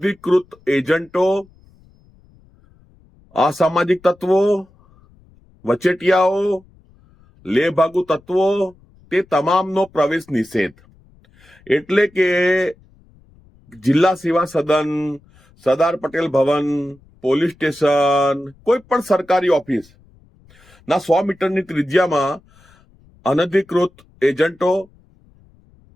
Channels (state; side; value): noise; left; rumble, 30 dB below the sound